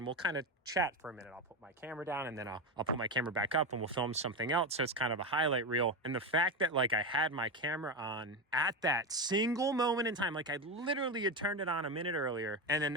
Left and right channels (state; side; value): normal; both; correlation 0.14